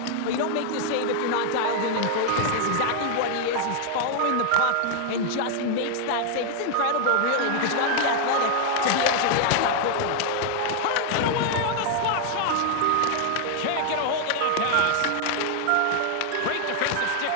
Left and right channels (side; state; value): both; different; correlation 0.00